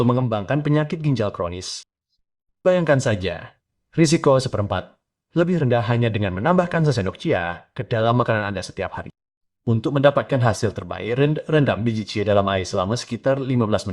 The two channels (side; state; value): both; identical; correlation 1.00